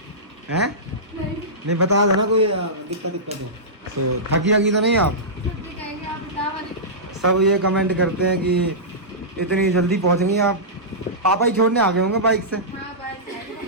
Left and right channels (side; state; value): both; normal; correlation -0.16